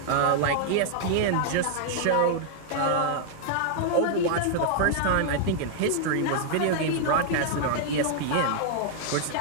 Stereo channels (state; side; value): different; both; correlation -0.01